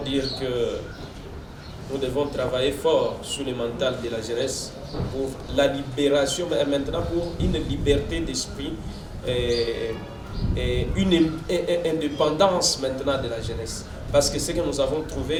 que nous devons travailler fort sur le mental de la jeunesse pour la libération, mais maintenant pour une liberté d'esprit et une indépendance maintenant de la jeunesse. Parce que ce que nous avons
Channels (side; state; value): both; identical; correlation 1.00